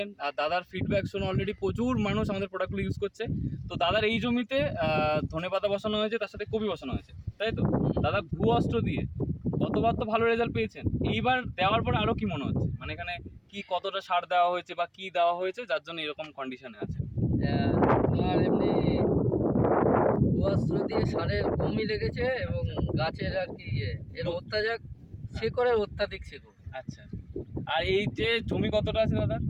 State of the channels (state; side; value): identical; both; correlation 1.00